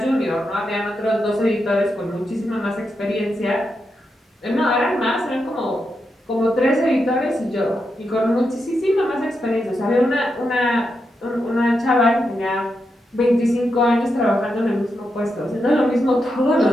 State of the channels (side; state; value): both; normal; correlation 0.85